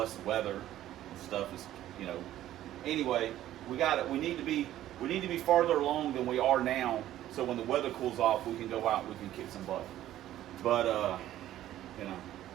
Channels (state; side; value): quieter; left; 13.2 dB